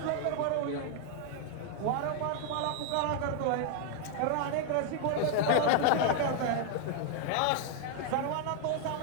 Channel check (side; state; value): both; different; correlation 0.00